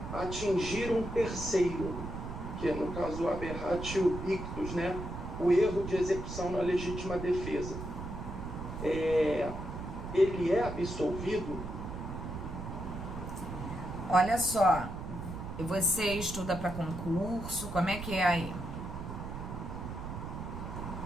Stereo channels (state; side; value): noise; right; rumble, 7 dB below the sound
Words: atingir um terceiro, que é no caso o aberratio ictus, né? O erro de execução na legítima defesa, ele é absolvido? Olha só, você estuda para concurso, como é que é aí?